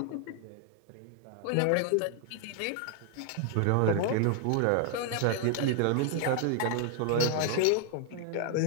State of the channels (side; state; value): both; different; correlation 0.00